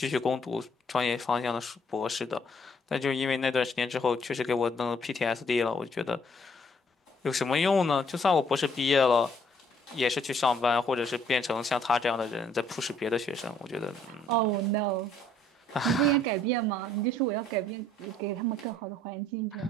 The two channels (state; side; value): normal; both; correlation 0.64